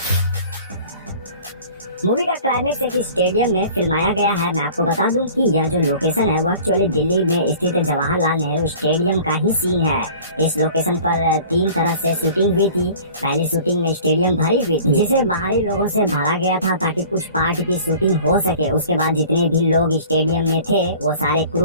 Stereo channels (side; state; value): both; inverted; correlation -0.46